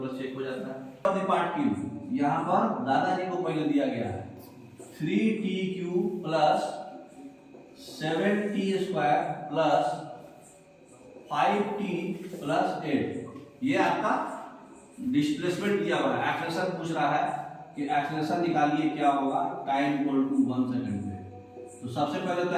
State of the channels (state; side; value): identical; both; correlation 1.00